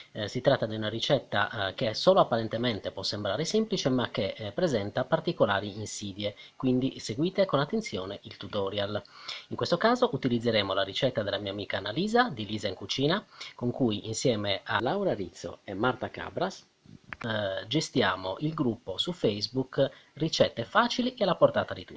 Si tratta di una ricetta che solo apparentemente può sembrare semplice, ma che presenta particolari insidie, quindi seguite con attenzione il tutorial. In questo caso utilizzeremo la ricetta della mia amica Annalisa di Lisa in Cucina, con cui insieme a Laura Rizzo e Marta Cabras gestiamo il gruppo su Facebook Ricette facili e alla portata di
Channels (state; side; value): identical; both; correlation 1.00